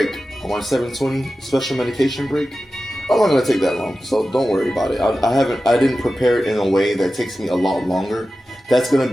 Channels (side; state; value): both; normal; correlation 0.94